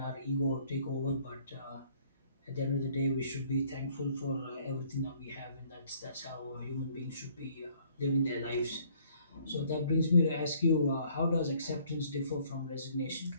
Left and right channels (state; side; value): inverted; both; correlation -0.61